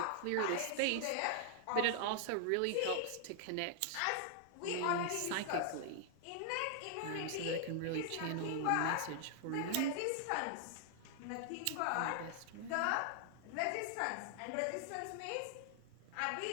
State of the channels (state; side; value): different; both; correlation 0.00